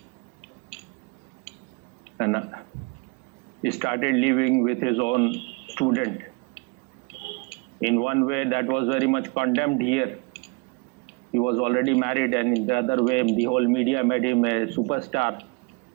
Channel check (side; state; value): left; quieter; 28.7 dB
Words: he started living with his own student. In one way, that was very much condemned here. He was already married, and in the other way, the whole media made him a superstar.